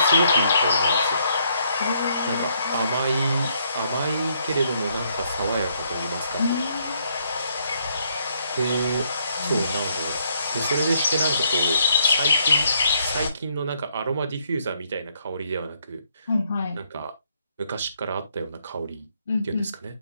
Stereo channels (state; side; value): inverted; both; correlation -0.71